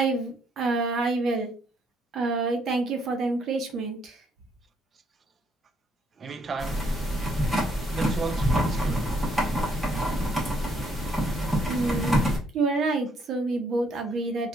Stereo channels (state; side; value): normal; both; correlation 0.70